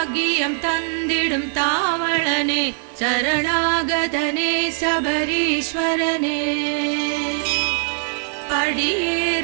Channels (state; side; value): silent; left; 65 dB below the other